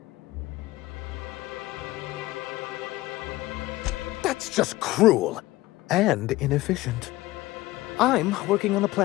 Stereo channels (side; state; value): right; quieter; 18.3 dB